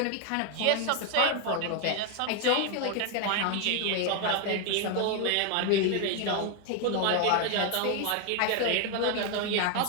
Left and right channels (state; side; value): different; both; correlation 0.01